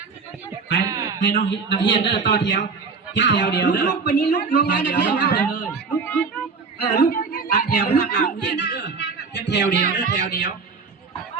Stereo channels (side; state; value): left; quieter; 4.9 dB